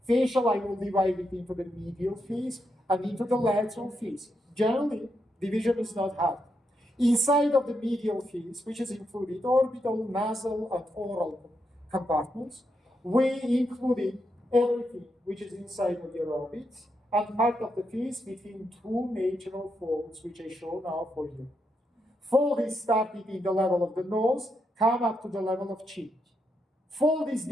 Facial, I will divide it into the medial face and into the lateral face. Generally, division is not hard. Inside of the medial face, which is included orbital, nasal, and oral compartments, we included everything which is inside of your orbits and part of the face between 2 natural folds, which I show now for you. Fold is started in the level of the nose, come up to the level of chin. Fold is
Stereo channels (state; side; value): normal; both; correlation 0.82